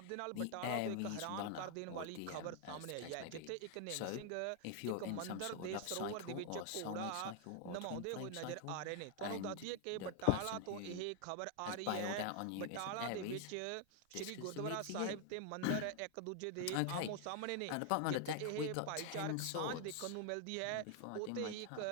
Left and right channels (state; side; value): different; both; correlation 0.00